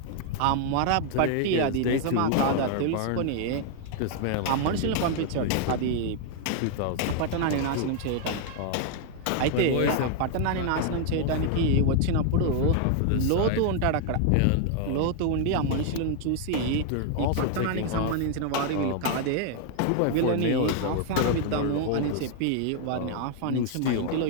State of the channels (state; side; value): different; both; correlation 0.00